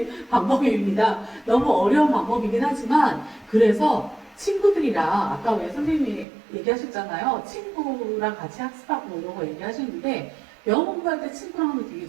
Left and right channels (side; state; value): left; drops out; at 6.2 s